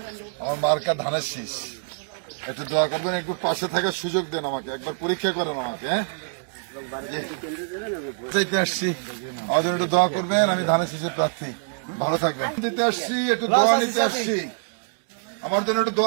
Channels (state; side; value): silent; left; digital silence